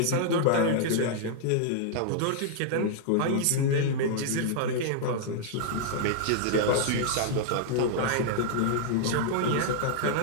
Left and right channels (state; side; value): different; both; correlation -0.01